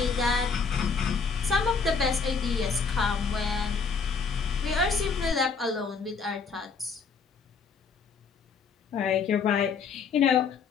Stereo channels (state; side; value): quieter; right; 5.4 dB